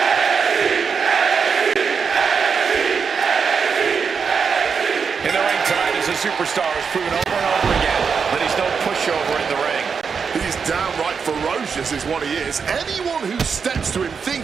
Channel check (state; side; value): quieter; left; 5.9 dB